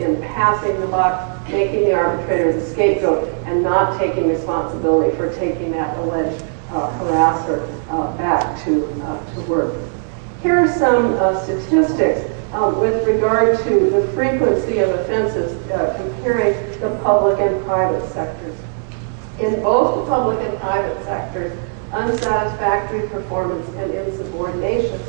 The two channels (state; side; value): silent; left; 67 dB below the other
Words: in passing the buck, making the arbitrator the scapegoat, and not taking responsibility for taking that alleged harasser back to work. Here are some statistics with regard to the frequency of offenses comparing the public and private sectors. In both the public and private sectors, unsatisfactory performance and insubordination